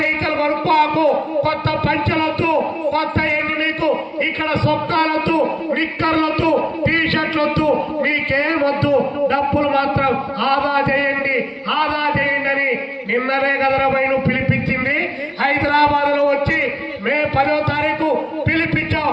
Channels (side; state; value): both; identical; correlation 1.00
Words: కొనుక్కోకు, కొత్త పంచలొద్దు, కొత్త ఎన్ని నీకు ఇక్కడ సొక్కాలొద్దు, నిక్కర్లొద్దు, టీ షర్ట్లొద్దు, మీకేమొద్దు. డబ్బులు మాత్రం ఆదా చేయండి అని నిన్ననే కదరబై నువ్వు పిలిపించింది. హైదరాబాద్ లో వచ్చి మే 10వ తారీఖు పిలిపించావు.